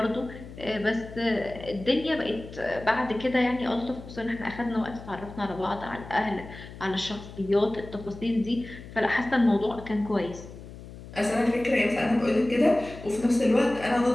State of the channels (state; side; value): noise; left; hum, 15 dB below the sound